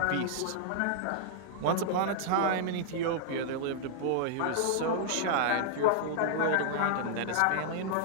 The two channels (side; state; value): both; different; correlation -0.01